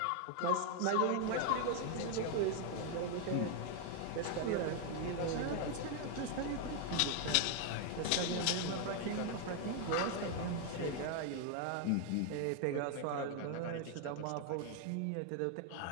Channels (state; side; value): different; both; correlation 0.01